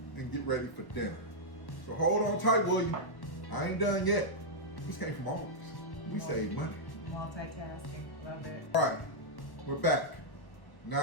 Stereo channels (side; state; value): right; late; 1.1 ms